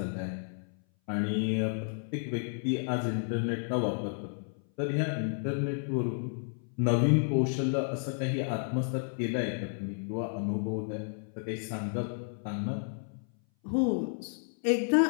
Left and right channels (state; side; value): silent; right; 57 dB below the other